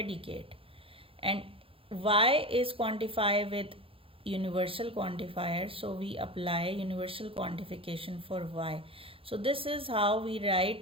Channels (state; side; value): late; left; 0.27 ms